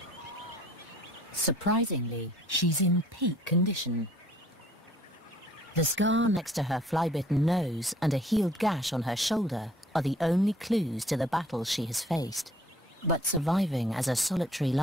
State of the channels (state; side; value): normal; both; correlation 0.56